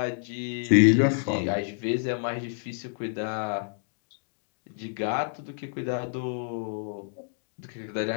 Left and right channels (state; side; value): silent; right; digital silence